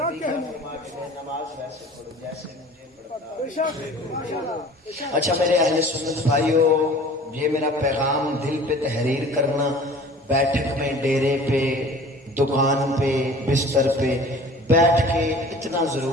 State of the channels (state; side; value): normal; both; correlation 0.45